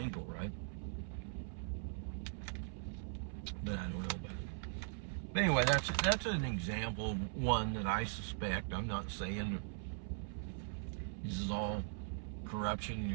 right? But I don't know about it. But anyway, that's an example of one that I suspect. I'm not saying this is all corruption in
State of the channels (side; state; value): left; silent; 51 dB below the other